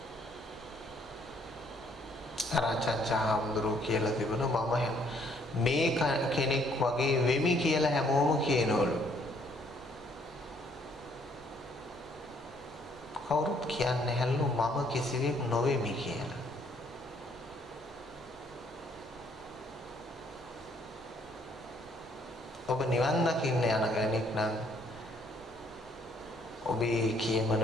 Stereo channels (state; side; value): normal; both; correlation 0.66